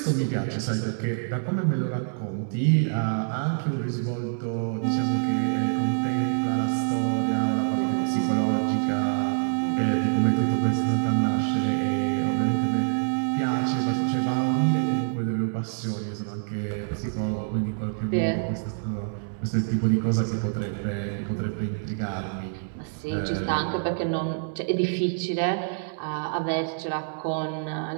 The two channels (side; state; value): left; silent; digital silence